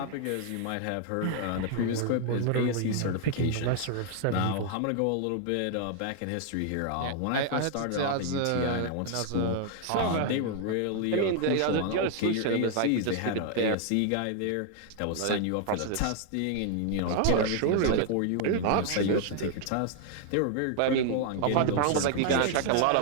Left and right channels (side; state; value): both; different; correlation 0.00